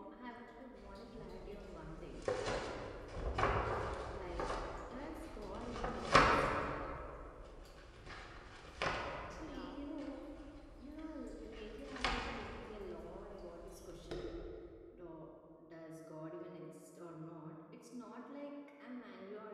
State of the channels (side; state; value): both; identical; correlation 1.00